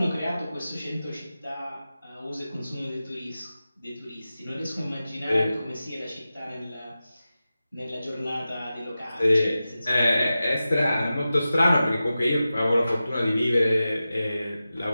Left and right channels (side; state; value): both; inverted; correlation -0.94